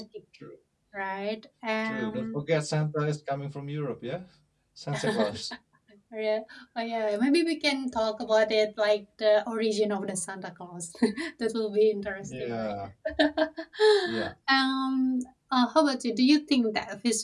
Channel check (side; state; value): both; identical; correlation 1.00